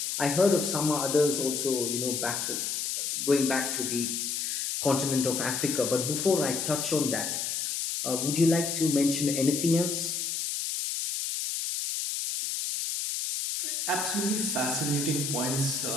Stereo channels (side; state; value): left; noise; hiss, 2 dB below the sound